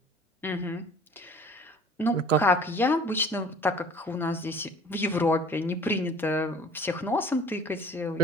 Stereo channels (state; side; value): normal; both; correlation 0.48